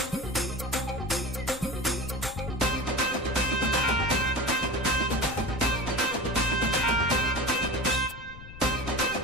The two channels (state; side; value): noise; left; rumble, 15 dB below the sound